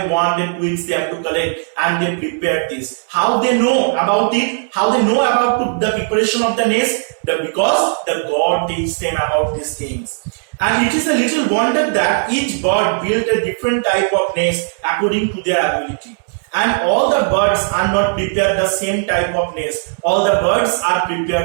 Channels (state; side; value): silent; left; digital silence